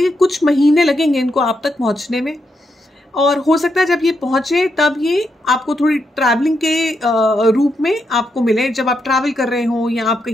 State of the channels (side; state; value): both; normal; correlation 0.82